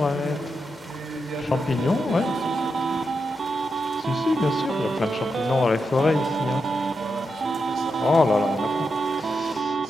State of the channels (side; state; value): both; normal; correlation 0.86